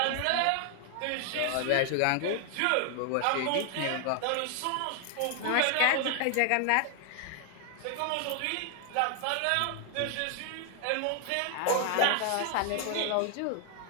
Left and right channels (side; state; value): both; different; correlation 0.00